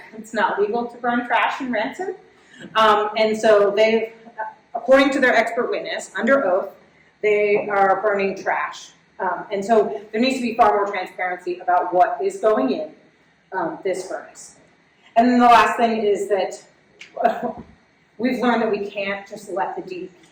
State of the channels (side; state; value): both; identical; correlation 1.00